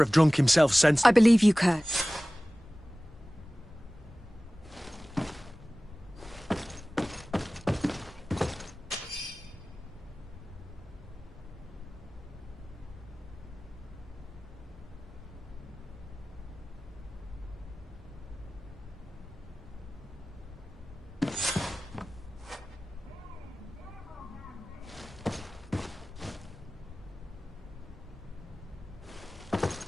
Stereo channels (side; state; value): both; normal; correlation 0.98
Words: drunk himself senseless. I believe you, Kurt.